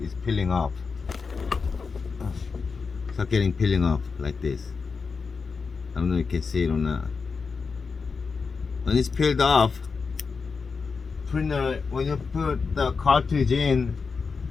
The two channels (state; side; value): quieter; right; 5.0 dB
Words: peeling off. Peeling off like this. I don't know if you can see it or not. When it's peeled off, printer, when you put the cartridge in